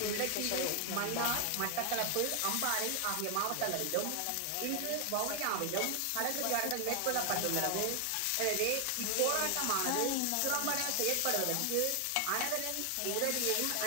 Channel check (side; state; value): both; different; correlation 0.00